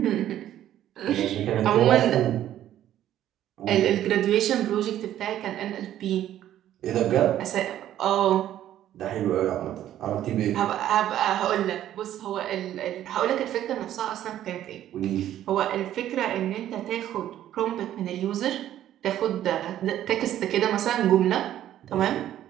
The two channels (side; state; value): left; quieter; 12.0 dB